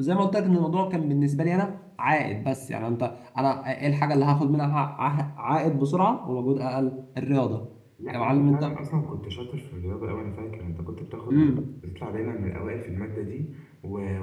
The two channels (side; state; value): both; identical; correlation 1.00